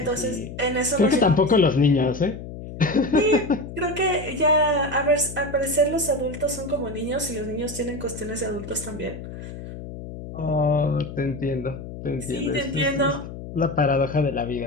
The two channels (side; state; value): left; noise; hum, 11 dB below the sound